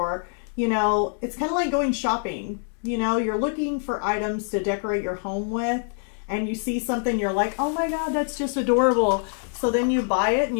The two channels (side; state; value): right; silent; 62 dB below the other